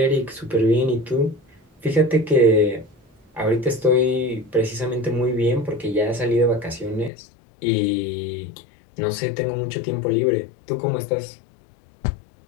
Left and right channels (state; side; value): drops out; right; at 7.1 s